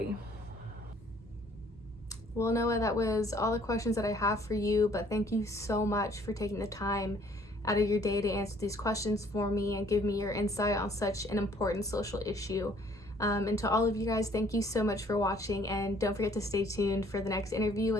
Well, Noah, that was all the questions that I have for you, but thank you so much for taking the time out of your day to answer these questions for me and give me your insight on such an important social issue. And to all of you guys, thank you so much for watching, and don't forget to stay tuned for the next interview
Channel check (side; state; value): both; normal; correlation 0.60